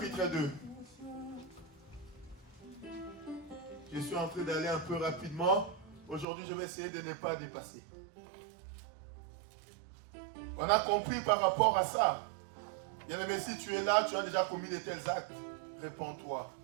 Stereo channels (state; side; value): drops out; left; at 6.2 s